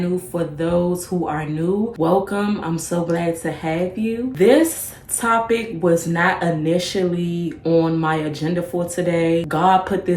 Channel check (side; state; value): both; identical; correlation 1.00